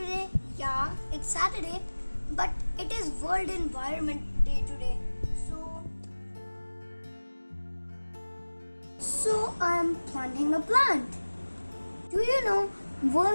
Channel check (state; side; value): inverted; both; correlation -1.00